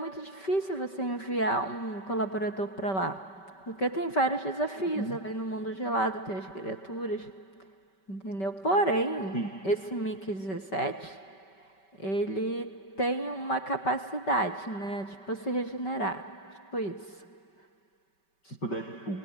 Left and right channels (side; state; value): right; late; 5.2 ms